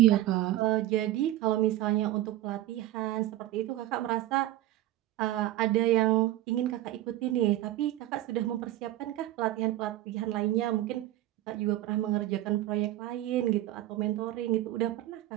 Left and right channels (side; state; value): left; quieter; 14.9 dB